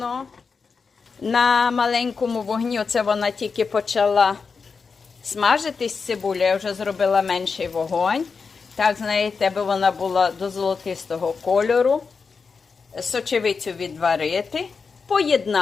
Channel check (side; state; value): right; quieter; 5.1 dB